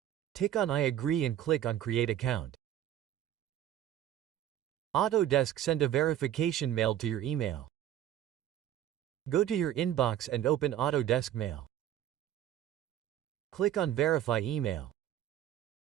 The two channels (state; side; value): quieter; left; 11.5 dB